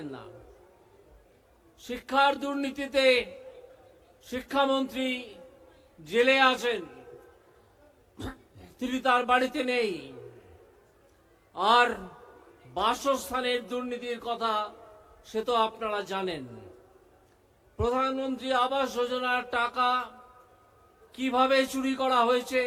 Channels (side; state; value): both; identical; correlation 1.00